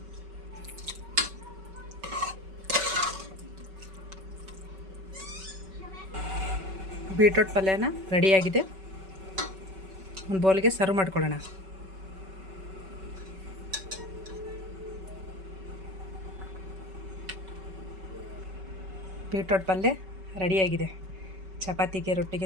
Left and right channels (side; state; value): left; late; 5.3 ms